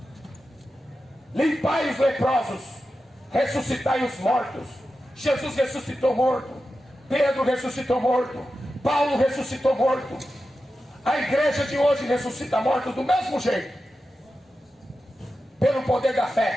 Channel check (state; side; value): normal; both; correlation 0.91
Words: Limpai os leprosos, ressuscitai os mortos. Jesus ressuscitou morto, Pedro ressuscitou morto, Paulo ressuscitou morto. A igreja de hoje ressuscita mortos do mesmo jeito, pelo poder da